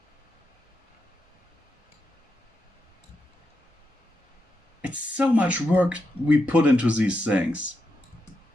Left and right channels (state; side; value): normal; both; correlation 0.85